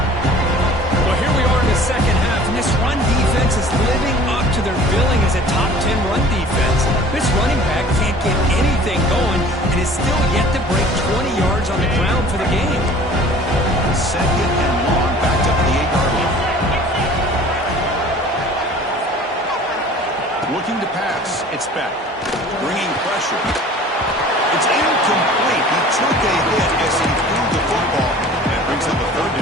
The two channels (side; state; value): both; normal; correlation 0.47